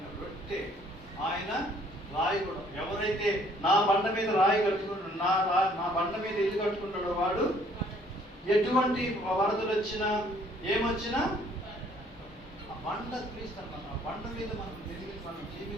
రొట్టె, ఆయన రాయి కూడా. ఎవరైతే నా బండ మీద రాయి కట్టుకుంటాడో, నా బండ మీద ఇల్లు కట్టుకుంటాడో వాడు ఎటువంటి వరదలు వచ్చినా ఏమొచ్చినా ఆ బండ క్రీస్తు అన్నమాట. ఆ బండ మీద మనం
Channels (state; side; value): normal; both; correlation 0.61